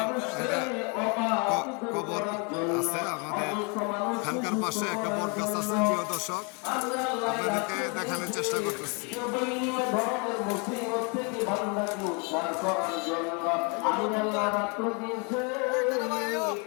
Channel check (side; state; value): right; quieter; 33.6 dB